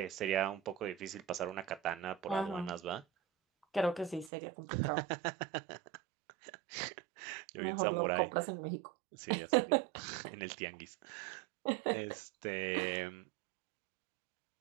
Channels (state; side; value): drops out; left; at 4.3 s